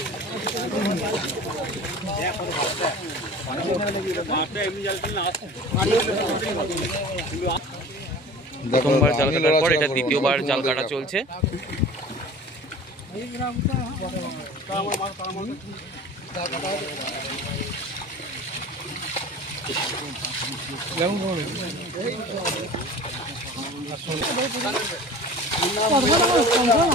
প্রথমবার জাল কাটার পর এটা দ্বিতীয়বার জাল কাটা চলছে।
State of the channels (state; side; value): normal; both; correlation 0.40